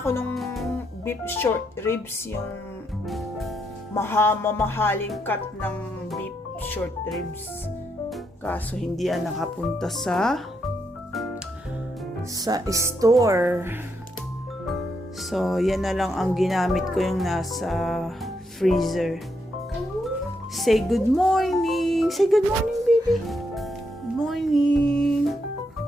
ng beef short ribs, yung mamahaling cut ng beef short ribs. Kaso hindi yan nakapunta sa store. So, yan na lang ang ginamit ko, yung nasa freezer. Say good morning. Say good morning, baby. Good morning.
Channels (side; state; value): both; normal; correlation 0.79